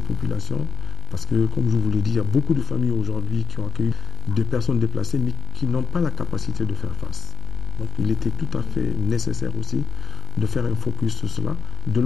populations. Parce que, comme je vous l'ai dit, il y a beaucoup de familles aujourd'hui qui ont accueilli des personnes déplacées, mais qui n'ont pas la capacité de faire face. Donc, il était tout à fait nécessaire aussi de faire un focus sur cela, de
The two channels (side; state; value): right; quieter; 6.2 dB